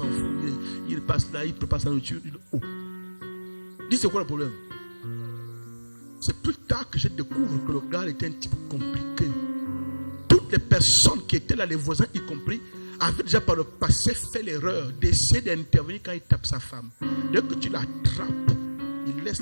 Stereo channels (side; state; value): both; inverted; correlation -1.00